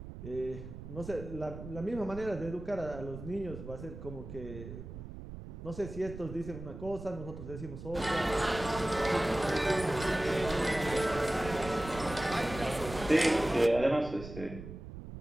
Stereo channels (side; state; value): right; noise; rumble, 11 dB below the sound